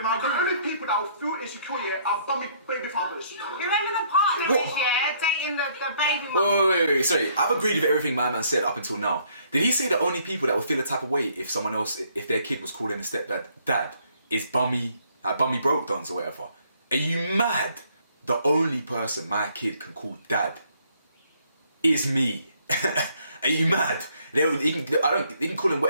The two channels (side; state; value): both; inverted; correlation -0.66